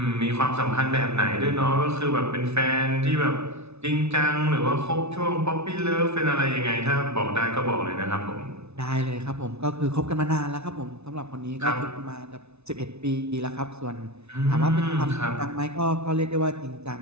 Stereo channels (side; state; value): left; late; 0.81 ms